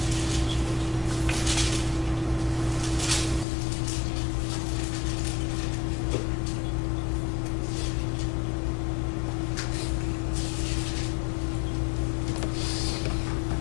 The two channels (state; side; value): drops out; right; at 3.5 s